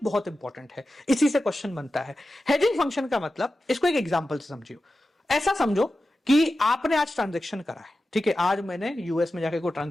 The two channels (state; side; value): normal; both; correlation 0.93